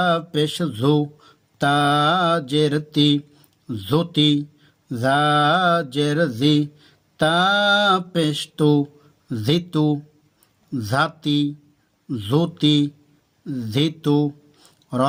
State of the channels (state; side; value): identical; both; correlation 1.00